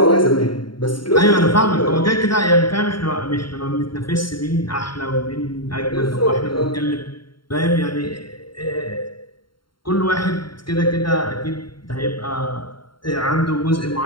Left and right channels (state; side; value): late; right; 0.73 ms